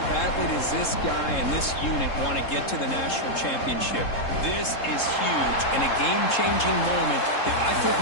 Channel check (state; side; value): late; right; 3.7 ms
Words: badly does this guy and this unit want to get to the national championship? This is huge and a game-changing moment that I think